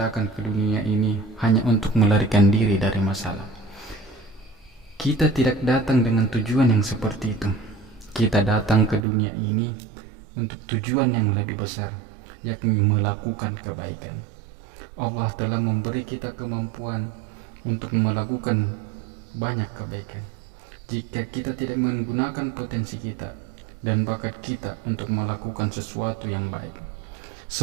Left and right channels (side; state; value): left; drops out; at 9.0 s